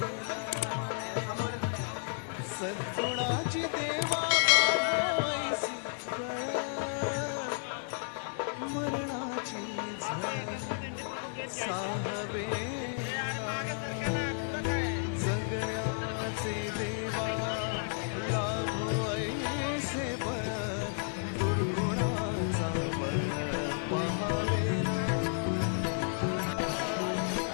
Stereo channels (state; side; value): silent; right; digital silence